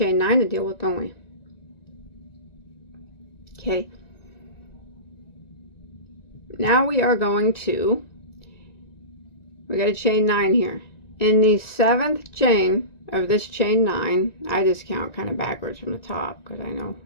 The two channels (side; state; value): right; late; 1.9 ms